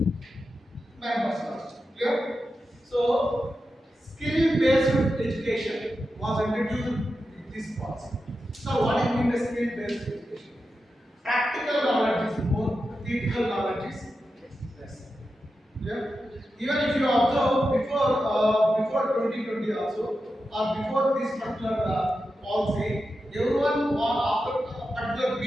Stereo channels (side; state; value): both; normal; correlation 0.90